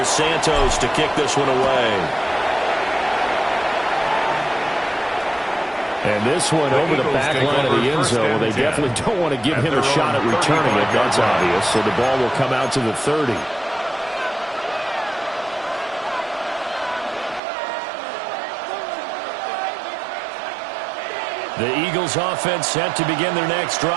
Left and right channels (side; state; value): left; drops out; at 17.4 s